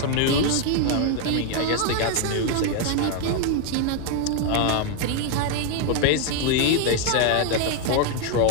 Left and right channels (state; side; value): different; both; correlation 0.01